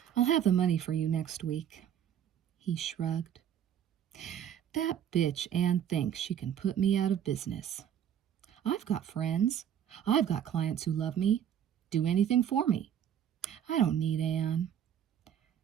"I'll have the money for you next week," he shrugged. "That bitch Ann thinks she can put me out of business. I've got friends. I've got clients who love me, do anything for me. I don't need Ann."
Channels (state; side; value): quieter; left; 9.5 dB